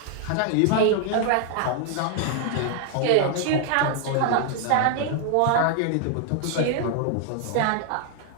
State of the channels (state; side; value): different; both; correlation 0.00